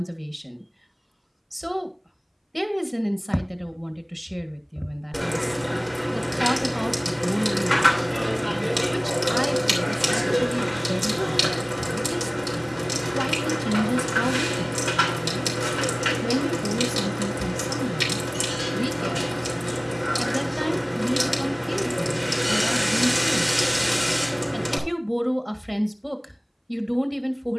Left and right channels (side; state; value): both; identical; correlation 1.00